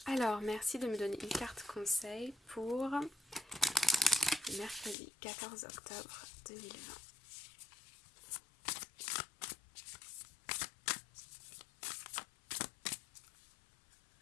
Alors, merci de me donner une carte conseil pour mercredi 14 octobre 2020.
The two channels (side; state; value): right; drops out; at 5.0 s